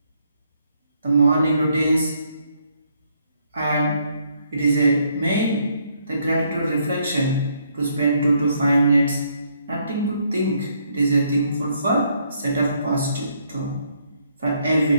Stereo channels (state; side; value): inverted; both; correlation -0.71